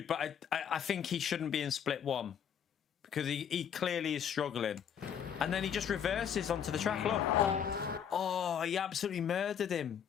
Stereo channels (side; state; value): right; quieter; 8.3 dB